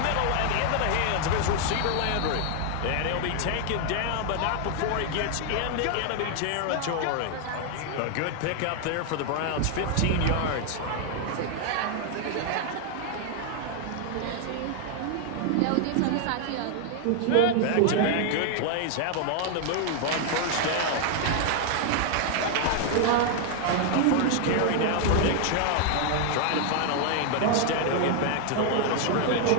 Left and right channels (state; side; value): different; both; correlation 0.00